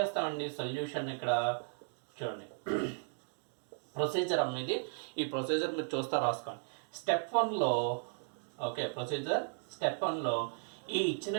సొల్యూషన్ ఇక్కడ చూడండి, ప్రొసీజర్ అనేది ఈ ప్రొసీజర్ మీరు చూస్తా రాసుకోండి. స్టెప్ 1లో ఓకే, ప్రొసీజర్ స్టెప్ 1లో ఈ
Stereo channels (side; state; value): left; silent; digital silence